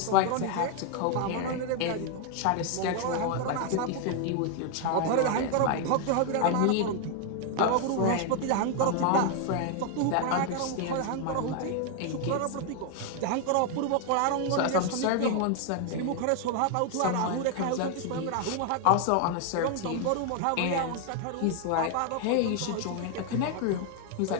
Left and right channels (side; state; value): both; different; correlation 0.00